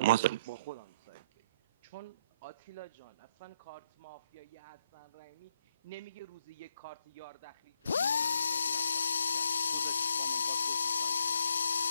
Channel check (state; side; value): inverted; both; correlation -0.70